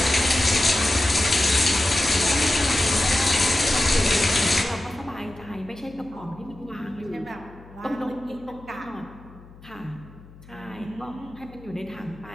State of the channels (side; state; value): left; noise; hum, 21 dB below the sound